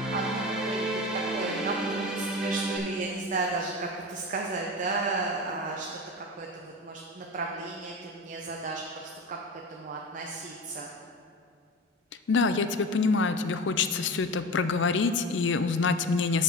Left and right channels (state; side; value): normal; both; correlation 0.29